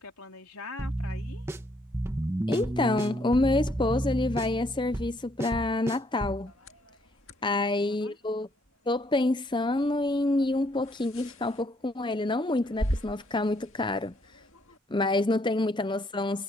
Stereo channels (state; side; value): normal; both; correlation 0.69